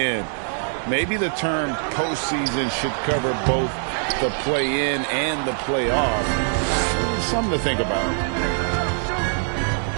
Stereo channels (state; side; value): silent; left; 56 dB below the other